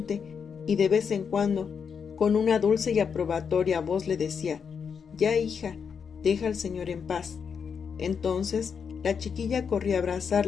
y de vez en cuando, con una dulce y aprobatoria voz le decía: «Ya, hija, deja al Señor en paz». Entonces, la chiquilla corría a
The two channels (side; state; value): right; quieter; 6.5 dB